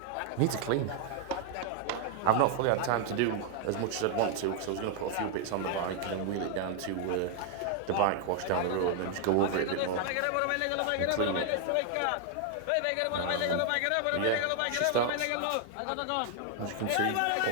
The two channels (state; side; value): different; both; correlation 0.00